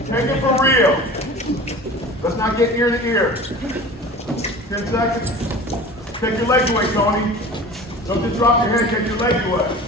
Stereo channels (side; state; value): both; normal; correlation 0.39